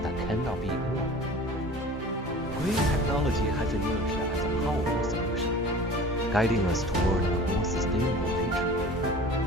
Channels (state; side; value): normal; both; correlation 0.41